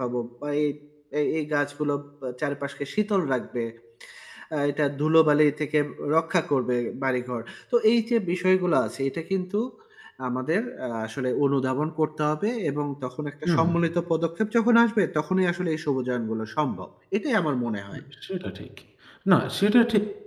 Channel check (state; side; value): identical; both; correlation 1.00